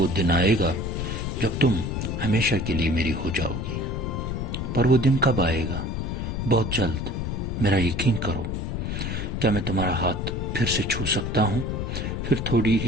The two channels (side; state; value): left; noise; rumble, 3 dB below the sound